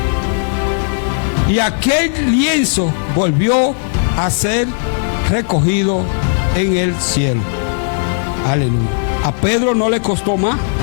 Y aquel lienzo volvió a ser recogido en el cielo. Aleluya. A Pedro no le costó más.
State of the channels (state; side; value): silent; right; digital silence